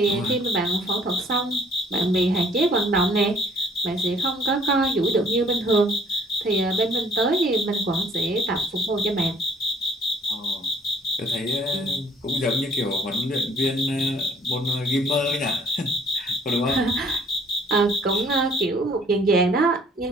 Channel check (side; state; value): both; normal; correlation 0.58